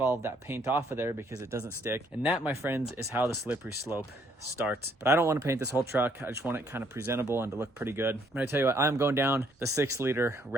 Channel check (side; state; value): both; normal; correlation 0.67